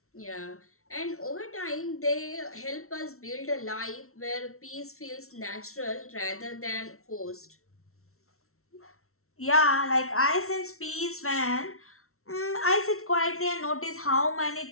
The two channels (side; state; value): right; late; 0.63 ms